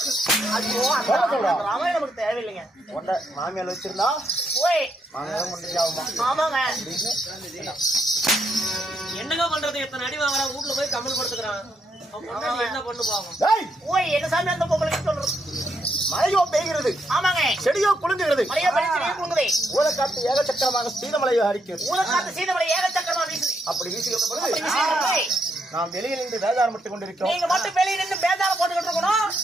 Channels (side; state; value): both; normal; correlation 0.78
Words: ஐயோ அவன் நமக்கு தேவையில்லைங்க. மாமியால் வச்சிருந்தா போய் ஆமாங்க. என்னங்க பண்றது? எத்தனை அடி வாங்குறா, வீட்டுல போய் கம்மல் படுத்துக்கிறான். என்ன பண்ணு பாவம். என்ன சாமி அந்த பொம்பளைக்கு சொல்றது? மழையோ பெய்கிறது, ஆமாங்க. செடியோ குலுங்குகிறது, மழையோ குலுங்குது. ஊழக்காத்து ஏகச்சக்கரமாக சீதமலையோ அடிக்கிறது. ஊழக்காத்து சீதமலை ஏகச்சக்கரமா வீசுது. அப்படி வீசுகின்ற பொழுது நாம் வெளியில் நின்று வேதாரம் மட்டும் கொண்டிருக்கிறோம். நீங்க மட்டும் வெளியே நின்று வேதாரம் போட்டுக்கிட்டு இருக்கணும்.